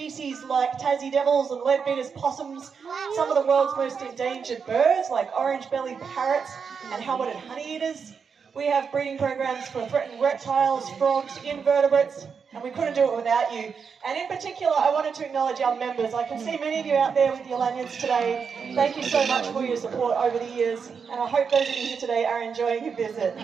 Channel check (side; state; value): left; quieter; 6.1 dB